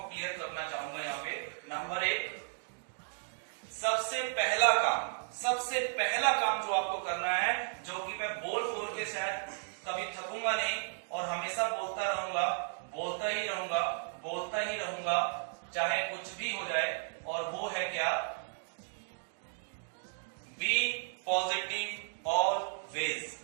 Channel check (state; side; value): silent; left; digital silence